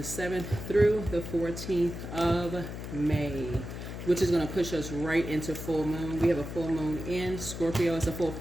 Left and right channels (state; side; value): noise; left; hum, 8 dB below the sound